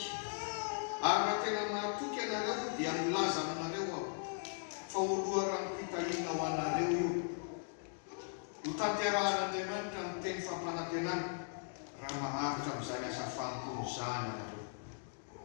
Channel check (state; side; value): silent; right; digital silence